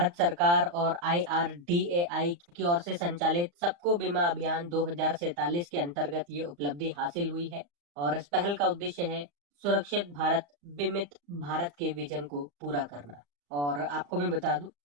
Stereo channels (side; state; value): left; late; 35 ms